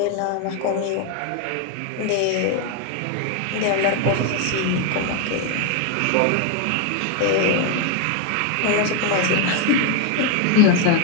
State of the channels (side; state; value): both; different; correlation 0.01